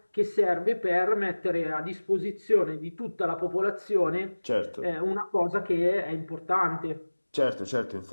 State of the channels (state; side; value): inverted; both; correlation -1.00